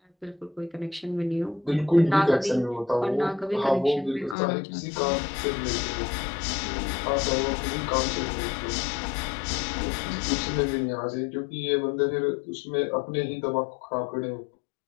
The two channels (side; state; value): right; drops out; at 4.4 s